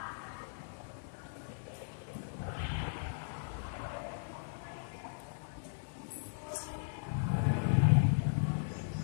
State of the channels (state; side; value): silent; right; digital silence